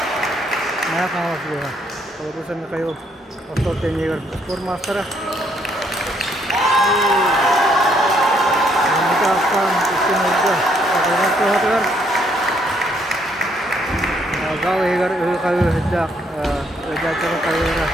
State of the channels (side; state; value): both; normal; correlation 0.70